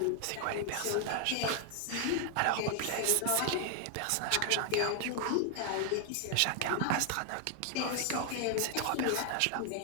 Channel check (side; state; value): both; different; correlation 0.00